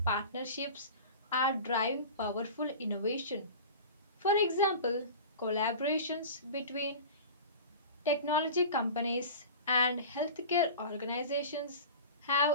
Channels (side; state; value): both; inverted; correlation -0.34